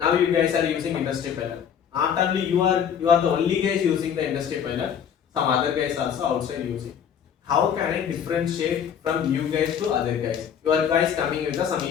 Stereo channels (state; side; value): quieter; right; 8.2 dB